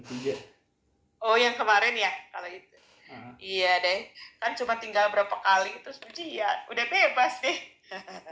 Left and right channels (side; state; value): both; identical; correlation 1.00